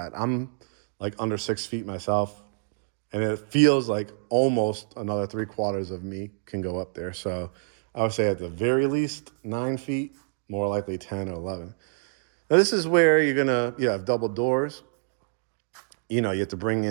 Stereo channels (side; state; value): left; silent; 60 dB below the other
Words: I'm like under 6 feet myself. And it feels like almost another 3/4 of me can go up there. So I would say at the very least 9 feet, more likely 10 or 11. Now this is where you have double doors. You have to bring